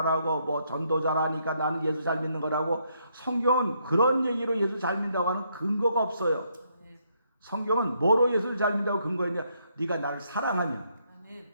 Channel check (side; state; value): both; inverted; correlation -0.74